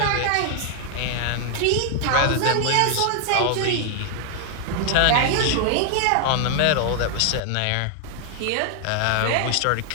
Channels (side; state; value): both; different; correlation 0.00